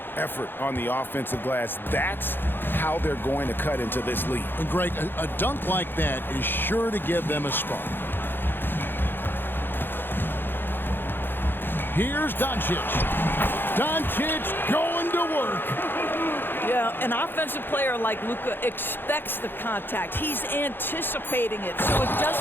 effort on the offensive glass. That's how they're going to cut into this lead. And Greg, a dunk like that is sure to give them a spark. Here's Doncic. Doncic going to work. Yeah, an offensive player like Luka expects the contact. He's anticipating it, so it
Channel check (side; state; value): right; late; 0.10 ms